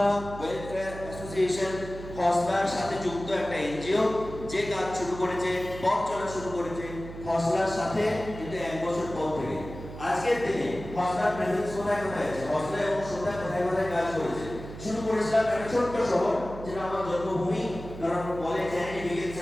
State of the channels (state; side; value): noise; right; hum, 12 dB below the sound